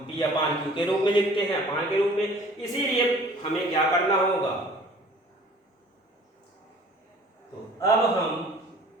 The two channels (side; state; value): both; normal; correlation 0.50